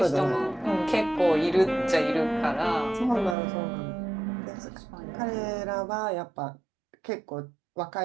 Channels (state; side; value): drops out; left; at 3.4 s